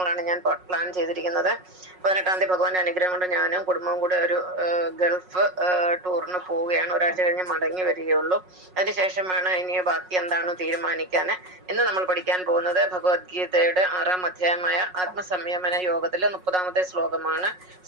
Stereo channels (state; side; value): late; left; 5.5 ms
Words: ഞാൻ പ്ലാൻ ചെയ്തിരിക്കുന്നത്. 18-ാം തീയതി ഭഗവാന്റെ അനുഗ്രഹം കൊണ്ട് ഞാനും കുടുംബവും കൂടെ ഒരു ഗൾഫ് ടൂറിന് പോവുകയാണ്. ഒരാഴ്ച കഴിഞ്ഞ് മടങ്ങി വരികയുള്ളൂ. അതിനുശേഷമാണ് ഇനി ബാക്കി എന്താണ് തീരുമാനിക്കാൻ. ഇന്ന് നമ്മൾ പഠിക്കാൻ പോകുന്നത് ഭഗവത്ഗീതയുടെ 6-ാം അധ്യായമായ ആത്മസംയമന യോഗത്തിലെ 30-ാമത്തെ ശ്ലോകമാണ്.